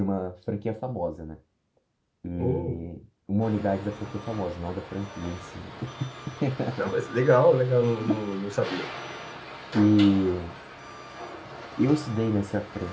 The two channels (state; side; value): identical; both; correlation 1.00